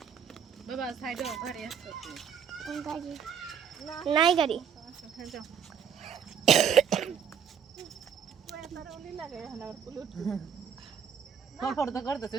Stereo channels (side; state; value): left; quieter; 7.5 dB